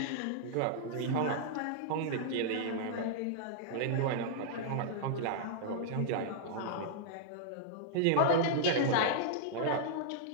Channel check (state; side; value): different; both; correlation -0.01